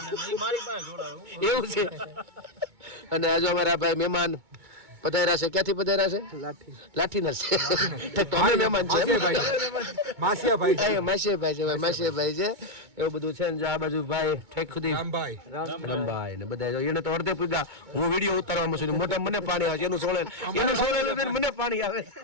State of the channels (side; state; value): left; late; 2.2 ms